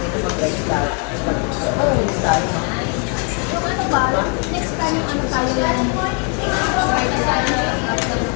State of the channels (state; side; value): quieter; right; 38.1 dB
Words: ito mag-restart. Mag-restart. Yung ano ba, next time yung ano tayo yung